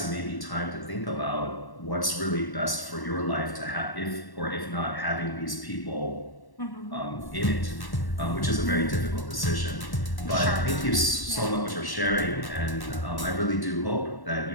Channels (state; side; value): late; right; 1.1 ms